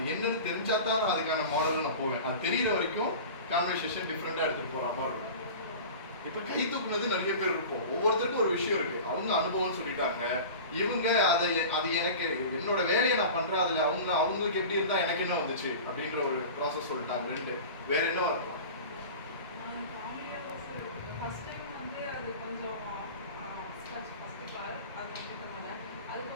என்னன்னு தெரிஞ்சா தான் நான் அதுக்கான மாடல் நான் போவேன். அது தெரியற வரைக்கும் கான்வர்சேஷன் டிஃப்ரெண்டா எடுத்துட்டு போற மாதிரி இருக்கும். இப்ப கை தூக்குனது நிறைய பேர் இருக்கும். ஒவ்வொருத்தருக்கும் ஒரு விஷயம் இருக்கு. அவங்க அனுபவம் சொல்லிட்டாங்க, இவங்க அது எனக்கு என்னோட வேலையை நான் பண்றேன், அதுல அவங்களுக்கு எப்படி இருந்தா எனக்கு என்ன வந்துச்சு அப்படின்ற ஒரு ப்ராசஸ் சொல்லிட்டாங்க. 2 வேற என்ன இருக்கும்? ஃபர்ஸ்ட் டைம் அது கொஞ்சம் ஃபர்ஸ்ட் கால் அது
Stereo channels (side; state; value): both; inverted; correlation -0.35